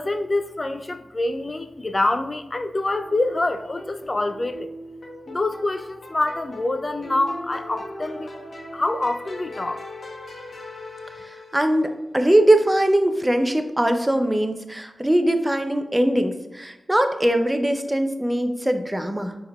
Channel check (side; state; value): both; normal; correlation 0.96